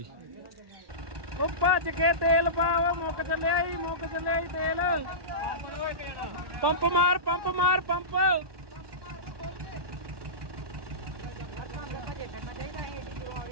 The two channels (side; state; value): left; late; 1.1 ms